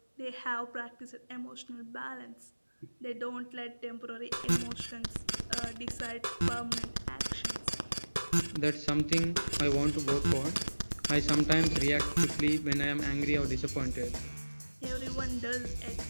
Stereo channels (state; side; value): inverted; both; correlation -1.00